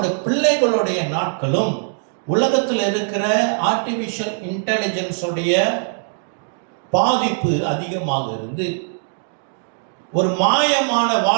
பிள்ளைகளுடைய நாட்களும் உலகத்தில் இருக்கிற ஆர்டிபிஷியல் இன்டெலிஜென்ஸுடைய பாதிப்பு அதிகமாக இருந்து ஒரு மாயமான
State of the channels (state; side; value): silent; left; 62 dB below the other